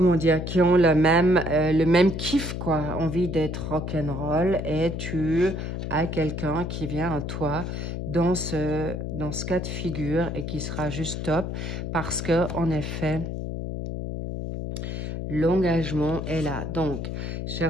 dire, qui ont le même kiff, quoi, envie d'être rock'n'roll, et tu as quelqu'un qui vient à toi dans ce cas de figure et qui sera juste top parce que, en effet, l'engagement est là. Donc,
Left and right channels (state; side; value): noise; left; hum, 4 dB below the sound